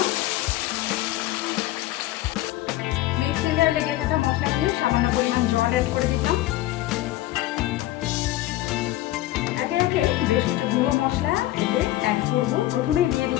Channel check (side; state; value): right; quieter; 15.8 dB